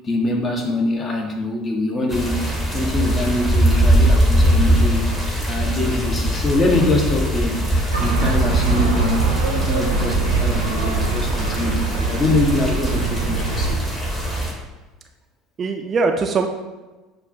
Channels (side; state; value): both; normal; correlation 0.61